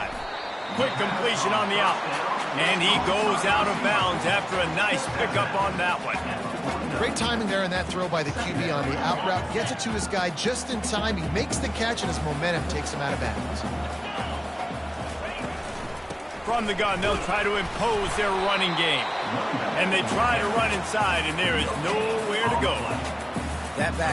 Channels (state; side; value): identical; both; correlation 1.00